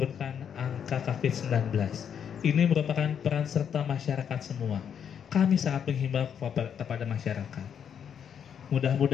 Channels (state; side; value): quieter; right; 8.1 dB